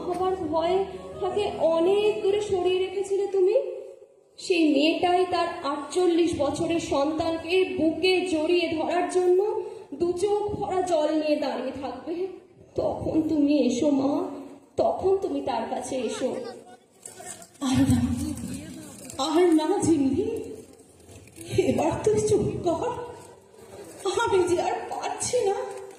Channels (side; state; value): both; identical; correlation 1.00